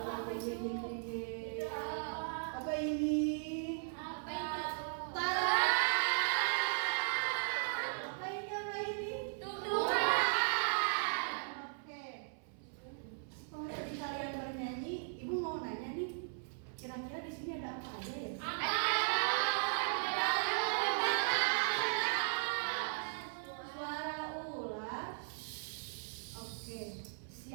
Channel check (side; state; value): left; silent; 53 dB below the other